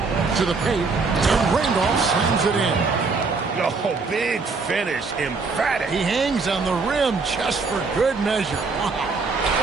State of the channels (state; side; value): quieter; left; 4.4 dB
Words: To the paint, and Randolph slams it in. Oh, big finish. Emphatic. He hangs on the rim just for good measure. Wow.